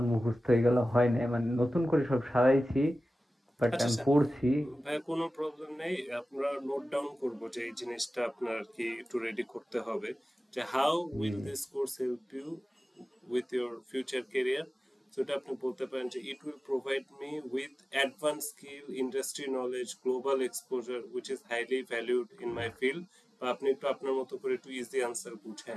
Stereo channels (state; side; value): normal; both; correlation 0.96